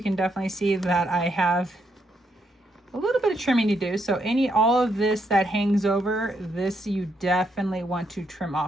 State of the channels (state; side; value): normal; both; correlation 0.77